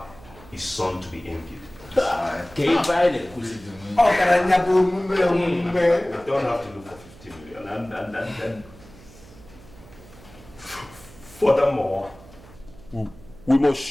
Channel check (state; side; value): noise; right; hum, 21 dB below the sound